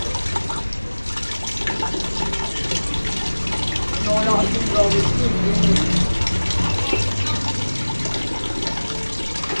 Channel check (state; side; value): inverted; both; correlation -1.00